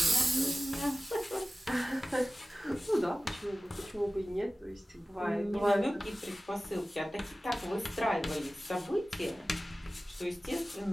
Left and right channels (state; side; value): normal; both; correlation 0.96